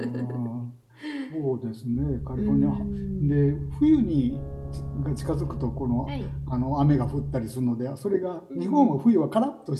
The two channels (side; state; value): both; identical; correlation 1.00